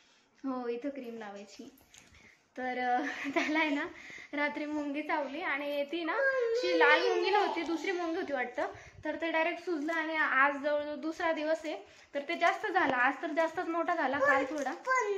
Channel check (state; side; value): identical; both; correlation 1.00